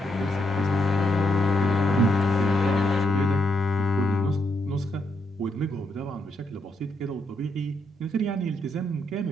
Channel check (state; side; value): normal; both; correlation 0.79